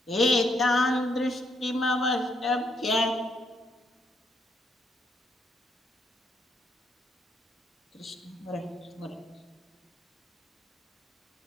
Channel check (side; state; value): both; normal; correlation 0.75